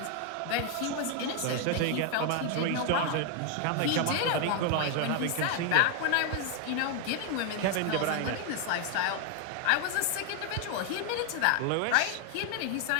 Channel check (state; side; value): different; both; correlation 0.00